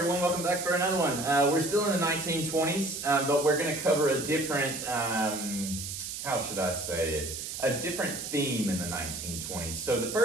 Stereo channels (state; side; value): noise; right; hiss, 6 dB below the sound